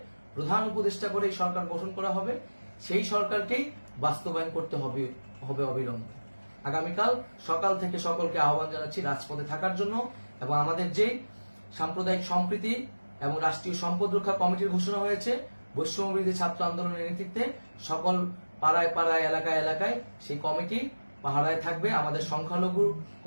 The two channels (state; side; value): inverted; both; correlation -1.00